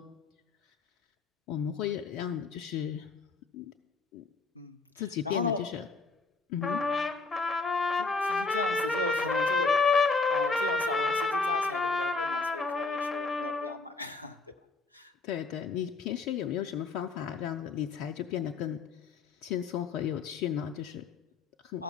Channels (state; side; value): quieter; right; 4.3 dB